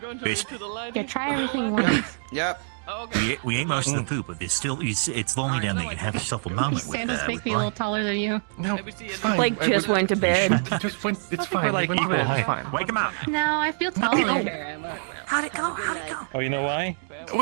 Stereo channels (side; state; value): left; silent; digital silence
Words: to the light. Yeah, try everything once. Yep. Okay. We ate most of the poop, but there's still... It's lonely down there. You can have yourself a moment. These sandals make me a little taller than you. No, it's fine. Blake just went to bed. He just went. It's fine. like He went to equal bed. height. It's fine. Wake him up! No, I feel taller. How'd it go? How'd it go? Oh, you know why?